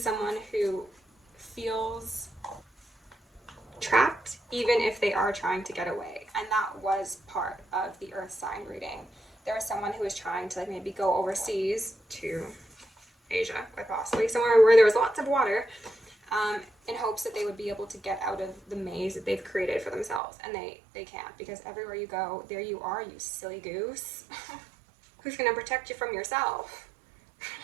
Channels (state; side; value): drops out; left; at 20.2 s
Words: someone who feels trapped, even if they are trying to get away. And that was part of the earth sign reading. There was someone who was trying to like maybe go overseas to Asia, quite possibly, somewhere where there was lots of water, in hopes that they would be able to get out of the maze that they've created for themselves. And they can't, because everywhere you go, there you are, you silly goose. Who's going to protect you from yourself?